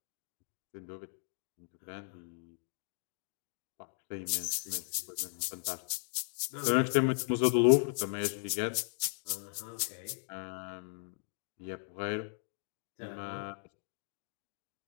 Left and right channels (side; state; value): right; silent; digital silence